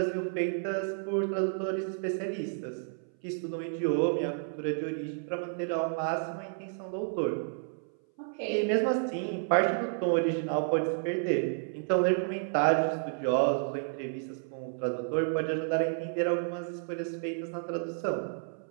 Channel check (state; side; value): silent; left; 57 dB below the other